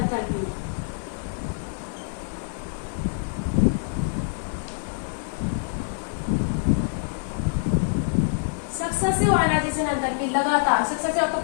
successive ionization enthalpy लगातार, सक्सेसिव आपको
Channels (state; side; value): silent; right; digital silence